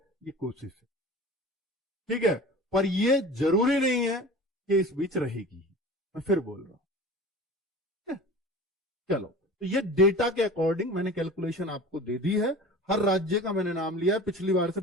कोशिश है। ठीक है, पर ये जरूरी नहीं है कि इस बीच रहेगी, मैं फिर बोल रहा हूं। चलो, तो ये डेटा के अकॉर्डिंग मैंने कैलकुलेशन आपको दे दी है। हर राज्य का मैंने नाम लिया है, पिछली बार से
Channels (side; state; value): both; normal; correlation 0.38